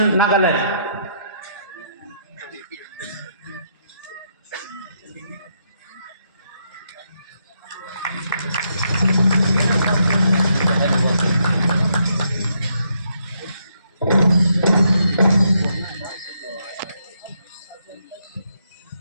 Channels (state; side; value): inverted; both; correlation -0.76